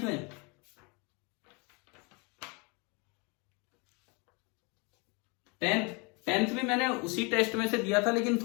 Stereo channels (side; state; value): right; quieter; 30.3 dB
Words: में? 10th भी मैंने उसी टेस्ट में से दिया था लेकिन